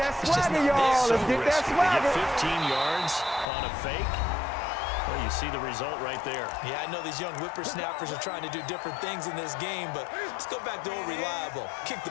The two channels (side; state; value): right; drops out; at 3.5 s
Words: swagger, y'all. Let's get that swagger. 15 yards on a fake. Well, you see the result right there. Yeah, I know these young whippersnappers are trying to do different things in this game, but let's go back to old reliable. Kick